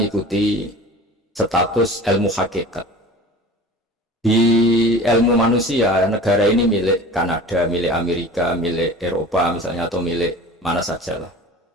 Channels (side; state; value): both; normal; correlation 0.39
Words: status ilmu hakikat. Di ilmu manusia, negara ini milik Kanada, milik Amerika, milik Eropa misalnya, atau milik mana saja lah.